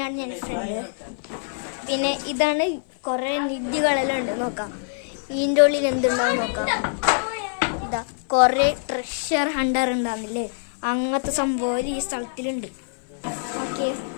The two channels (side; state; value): right; silent; 57 dB below the other